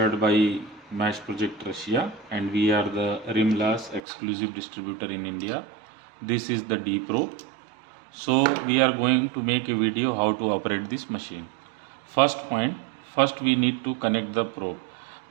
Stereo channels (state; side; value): drops out; left; at 4.0 s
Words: by Mash Project Russia, and we are the Rimlas exclusive distributor in India. This is the D Pro. So we are going to make a video how to operate this machine. First point, first we need to connect the probe.